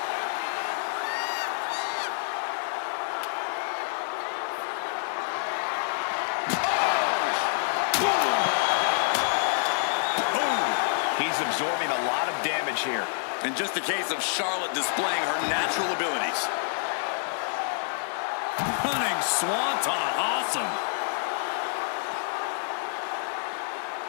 absorbing a lot of damage here. And just a case of Charlotte displaying her natural abilities. Running swanton, awesome.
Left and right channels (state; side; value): silent; right; 59 dB below the other